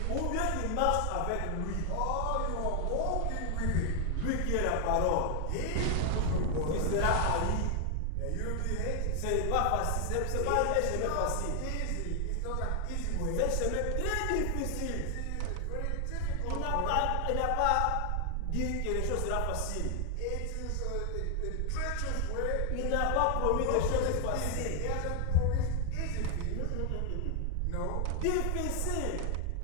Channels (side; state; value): both; different; correlation 0.00